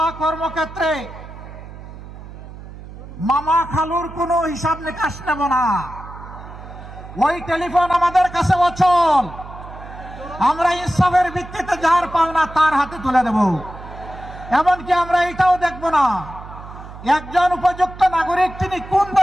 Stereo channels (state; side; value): noise; right; hum, 15 dB below the sound